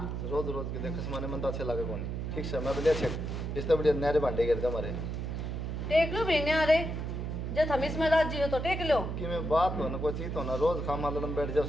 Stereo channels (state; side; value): noise; right; hum, 3 dB below the sound